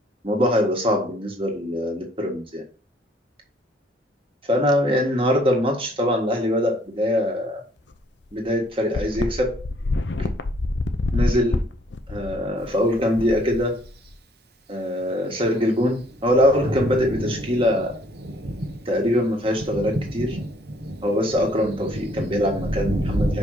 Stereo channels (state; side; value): normal; both; correlation 0.62